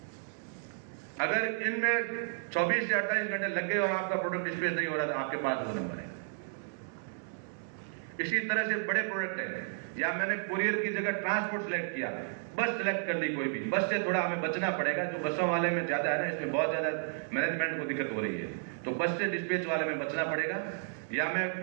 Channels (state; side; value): silent; left; digital silence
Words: अगर इनमें 24 से 28 घंटे लग गए और आपका प्रोडक्ट डिस्पैच नहीं हो रहा तो आपके पास वो नंबर है। इसी तरह से बड़े प्रोडक्ट है, या मैंने कुरियर की जगह ट्रांसपोर्ट सेलेक्ट किया, बस सेलेक्ट कर ली कोई भी, बस से थोड़ा हमें बचना पड़ेगा, जो बसों वाले में ज्यादा है ना, इसमें बहुत ज्यादा मैनेजमेंट को दिक्कत हो रही है, तो बस से डिस्पैच वाले में बचना पड़ेगा। या मैं